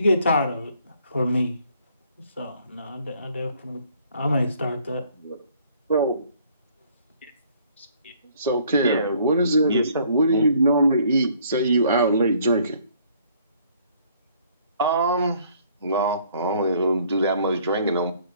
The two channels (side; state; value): both; inverted; correlation -0.61